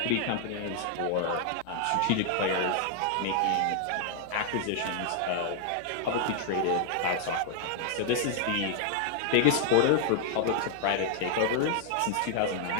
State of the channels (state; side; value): different; both; correlation 0.00